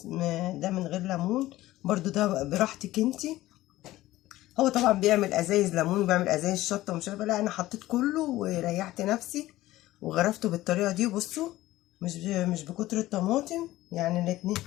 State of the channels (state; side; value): quieter; right; 16.4 dB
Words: ده من غير ليمون، برضو ده براحتك انتي. هو طبعا بيعمل ازايز ليمون وبيعمل ازايز شطه ومش عارفه، لا انا حطيت كله وريحت نفسي وغرفته بالطريقه دي. بصوا مش بكتر الطماطم، يعني